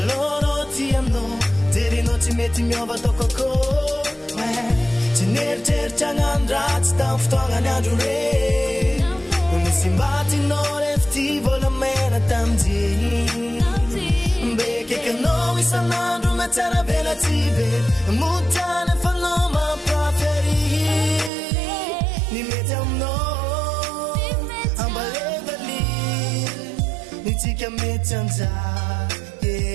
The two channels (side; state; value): left; drops out; at 21.3 s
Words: tiamno terino tsy mety miova tokoko tsy neritreritra gnandratsy tam fotoagnany andro re misy mbatinao refty volamena tamjeny mbekekanao isan'andro matsara velatsy be motany fanao mampaferi ny mety aminao ambalevali nitsika mety anja